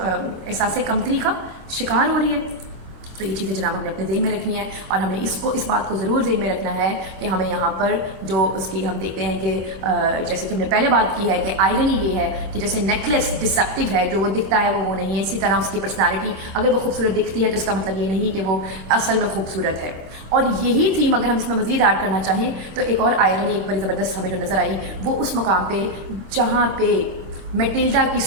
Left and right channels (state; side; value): late; left; 26 ms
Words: کا شکار ہو رہی ہے. تو یہ چیزیں جناب ہم نے اپنے ذہن میں رکھنی ہے، اور ہم نے اس بات کو ضرور ذہن میں رکھنا ہے کہ ہمیں یہاں پر جو اس کی ہم دیکھتے ہیں کہ جیسے کہ ہم نے پہلے بات کی ہے کہ آئرنی یہ ہے کہ جیسے نیکلس ڈسیپٹیو ہے، جو وہ دکھتا ہے وہ نہیں ہے، اسی طرح اس کی پرسنالٹی اگر وہ خوبصورت دکھتی ہے تو اس کا مطلب یہ نہیں کہ وہ اصل میں خوبصورت ہے. اور یہی تھیم اگر ہم اس میں مزید ایڈ کرنا چاہیں تو ایک اور آئرنی ایک بڑی زبردست ہمیں جو نظر آئی، وہ اس مقام پہ جہاں پہ میٹلڈا کی